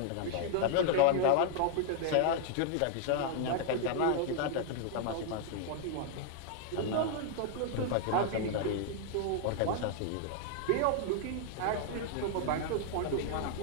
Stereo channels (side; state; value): both; different; correlation 0.00